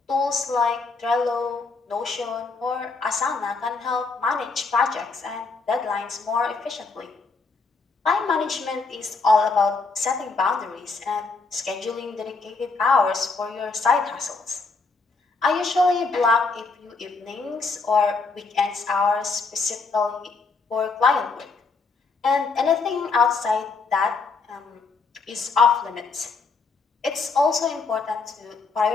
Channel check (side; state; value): right; quieter; 4.2 dB